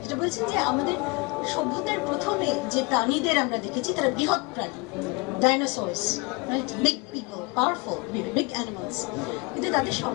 যেটা বলছেন যে আমাদের সভ্যতার প্রথমে যে প্রাণীদের আমরা দেখেছি তারা বৃহৎ প্রাণী, dinosaurs, right, big people, powerful, big animals, কিন্তু তাদের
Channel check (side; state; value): right; quieter; 28.0 dB